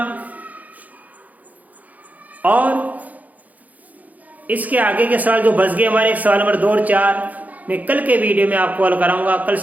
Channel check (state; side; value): late; left; 0.078 ms